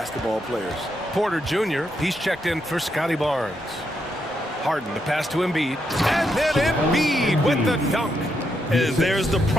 players. Porter Jr., he's checked in for Scotty Barnes. Harden to pass to Embiid. And then Embiid with the dunk. And there's the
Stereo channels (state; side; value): normal; both; correlation 0.80